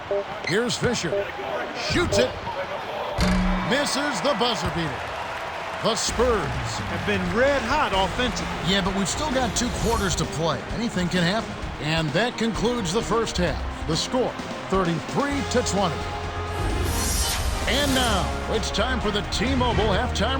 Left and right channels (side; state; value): both; identical; correlation 1.00